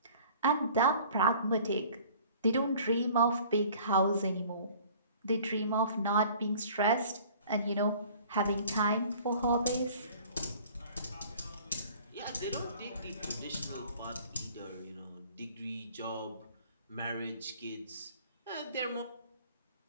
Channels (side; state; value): both; inverted; correlation -0.50